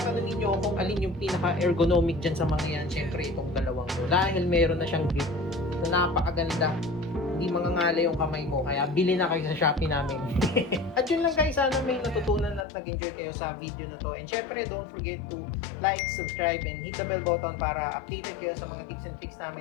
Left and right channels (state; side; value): drops out; right; at 12.7 s